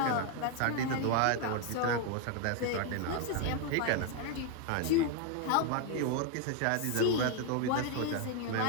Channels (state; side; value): different; both; correlation 0.01